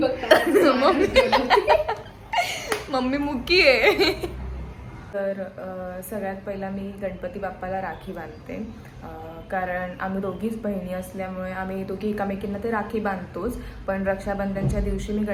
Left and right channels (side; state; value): both; identical; correlation 1.00